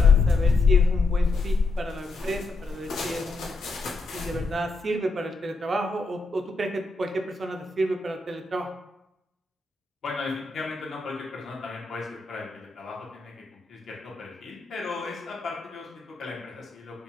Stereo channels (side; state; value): right; quieter; 3.3 dB